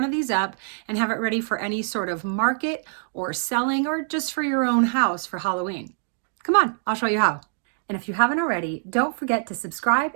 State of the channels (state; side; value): silent; left; 60 dB below the other